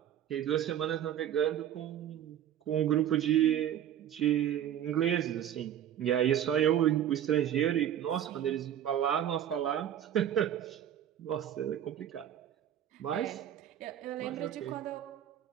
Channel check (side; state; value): left; quieter; 10.6 dB